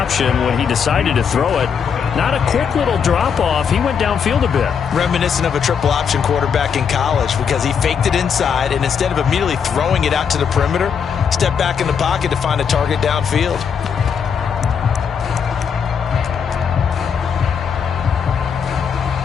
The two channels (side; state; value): right; quieter; 6.9 dB